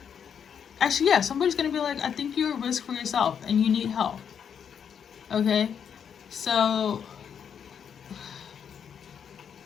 actually, yeah, somebody's gonna be like, I think you're a risk for yourself and you need help. Okay, so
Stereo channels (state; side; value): quieter; right; 7.7 dB